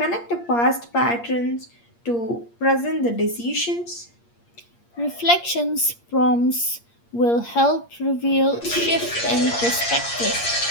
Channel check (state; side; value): late; right; 8.6 ms